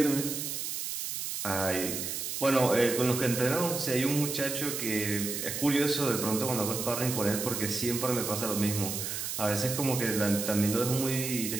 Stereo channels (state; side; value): noise; right; hiss, 4 dB below the sound